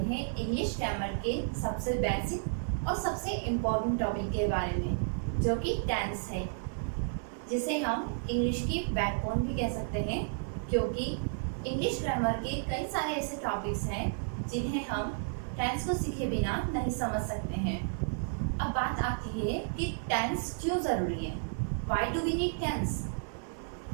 इंग्लिश ग्रामर के सबसे बेसिक और सबसे इम्पोर्टेंट टॉपिक के बारे में, जो कि टेंस है, जिसे हम इंग्लिश की बैकबोन भी कह सकते हैं, क्योंकि इंग्लिश ग्रामर के कई सारे ऐसे टॉपिक्स हैं जिन्हें हम टेंस को सीखे बिना नहीं समझ सकते हैं। अब बात आती है कि टेंस क्यों ज़रूरी है, why do we need tense.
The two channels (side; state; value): left; silent; 56 dB below the other